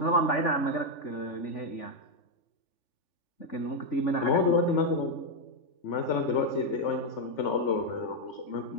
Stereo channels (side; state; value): right; late; 3.4 ms